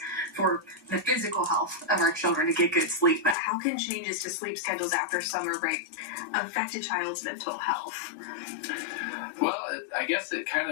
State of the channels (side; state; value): right; drops out; at 3.4 s